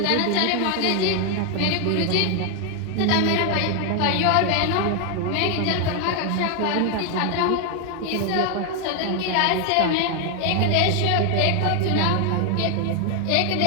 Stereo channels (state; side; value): different; both; correlation 0.01